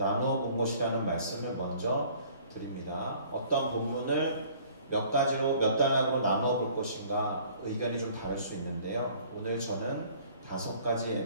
본 것이라는 말씀을 먼저 드립니다. 어떤 본문을 몇 가지로, 몇 단락으로 나누어 볼 것인가 의견이 좀 다를 수 있는데요, 오늘 저는 5가지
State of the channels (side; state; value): both; inverted; correlation -0.54